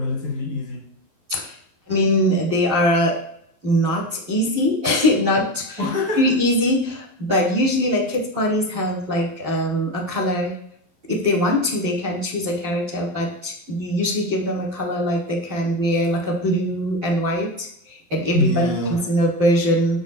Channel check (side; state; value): left; late; 12 ms